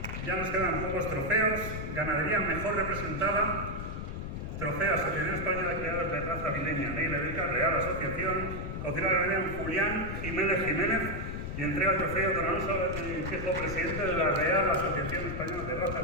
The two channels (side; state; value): left; noise; rumble, 5 dB below the sound